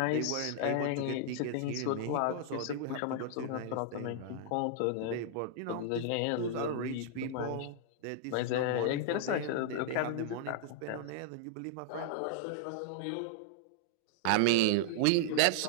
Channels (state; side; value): different; both; correlation -0.01